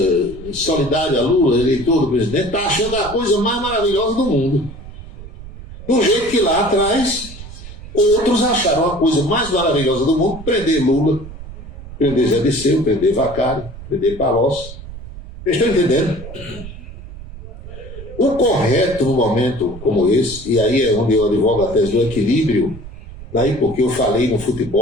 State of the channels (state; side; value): noise; right; rumble, 14 dB below the sound